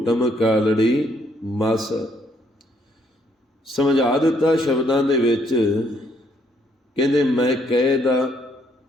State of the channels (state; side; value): normal; both; correlation 0.69